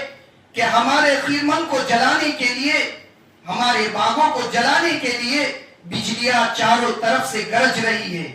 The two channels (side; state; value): both; identical; correlation 1.00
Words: کہ ہمارے خیمن کو جلانے کے لیے، ہمارے باغوں کو جلانے کے لیے بجلیاں چاروں طرف سے گرج رہی ہے.